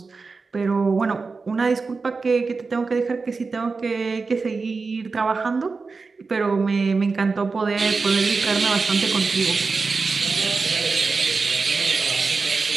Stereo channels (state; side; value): quieter; left; 4.4 dB